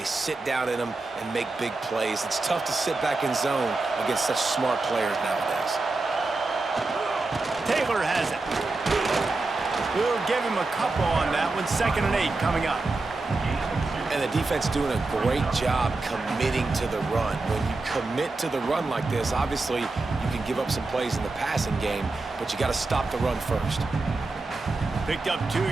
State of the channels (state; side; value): quieter; left; 3.4 dB